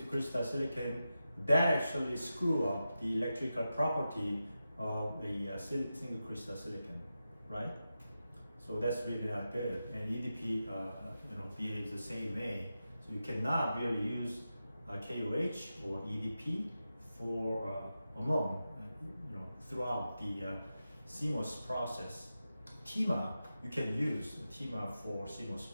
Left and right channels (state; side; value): inverted; both; correlation -0.91